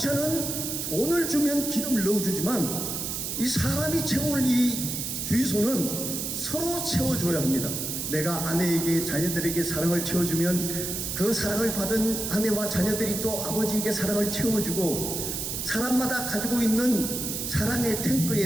돈을 주면 기름을 넣어주지만 이 사람이 채울 이 주유소는 서로 채워줘야 합니다. 내가 아내에게, 자녀들에게 사랑을 채워주면 그 사랑을 받은 아내와 자녀들이 또 아버지에게 사랑을 채워주고, 사람마다 가지고 있는 사랑의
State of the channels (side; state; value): right; noise; hiss, 3 dB below the sound